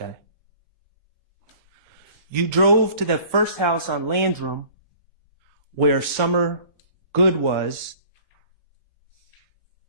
where Summer Good was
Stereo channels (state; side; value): inverted; both; correlation -0.50